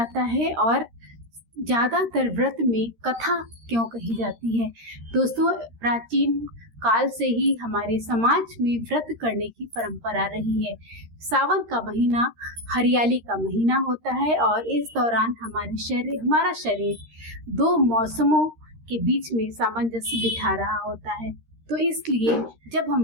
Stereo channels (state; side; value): late; left; 13 ms